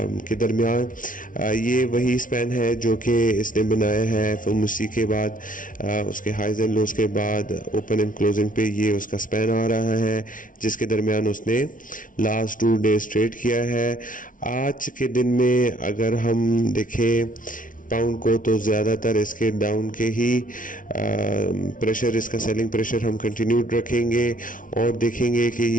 के दरमियान। ये वही स्पैन है जो कि इसने बनाया है फिर के बाद उसके हाइज एंड लोज के बाद ओपन एंड क्लोजिंग पे ये उसका स्पैन आ रहा है जिसके दरमियान उसने लास्ट 2 डेज ट्रेड किया है। आज के दिन में अगर हम देखें पाउंड को तो ज़्यादातर इसके डाउन के ही प्रेशर, इसका सेलिंग प्रेशर हम कंटिन्यूड रखेंगे और देखेंगे कि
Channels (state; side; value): late; right; 0.38 ms